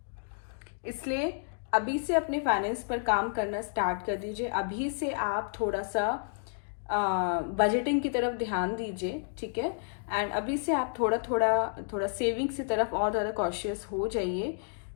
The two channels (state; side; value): silent; right; digital silence